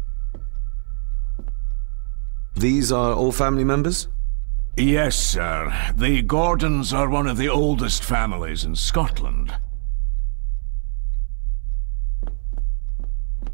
These are all family members? Yes, sir. The Gordons are one of the oldest families in Scotland.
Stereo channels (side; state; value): left; silent; 62 dB below the other